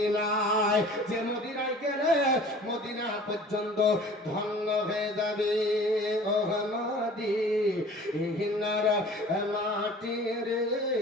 যে মদিনায় গেলে মদিনা পর্যন্ত ধন্য হয়ে যাবে। ও মদিনার মাটি রে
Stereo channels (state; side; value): normal; both; correlation 0.46